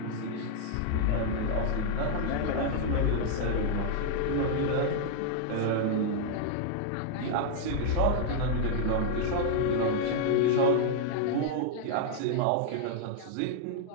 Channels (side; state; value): both; different; correlation -0.01